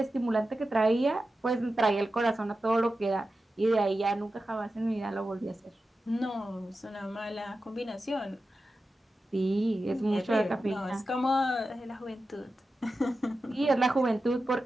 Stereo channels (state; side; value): normal; both; correlation 0.92